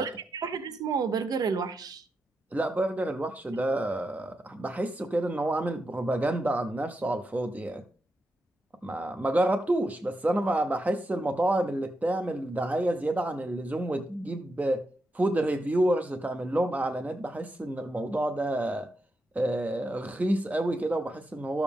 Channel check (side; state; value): both; normal; correlation 0.86